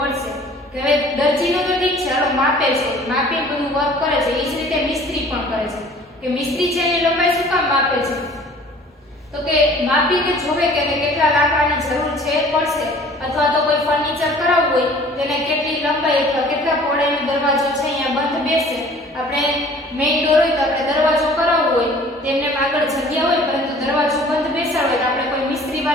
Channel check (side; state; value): both; normal; correlation 0.50